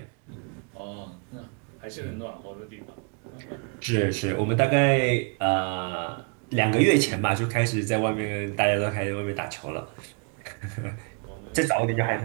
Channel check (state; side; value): quieter; left; 35.4 dB